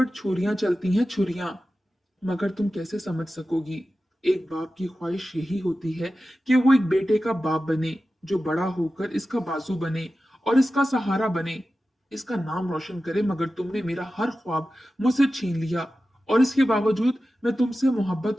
छुरियां चलती हैं, छुरियां। मगर तुम कैसे समझ सकोगी। एक बाप की ख्वाहिश यही होती है कि वो एक बेटे का बाप बने, जो बड़ा होकर इसका बाजू बने और इसका सहारा बने, इसका नाम रोशन करे। मगर तुमने मेरा हर ख्वाब मुझसे छीन लिया, और इसके बावजूद मैं तुमसे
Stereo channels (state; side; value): normal; both; correlation 0.94